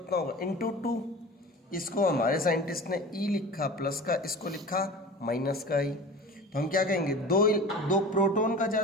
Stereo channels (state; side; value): normal; both; correlation 0.35